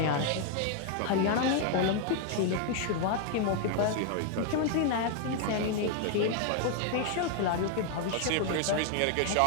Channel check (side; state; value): both; different; correlation 0.00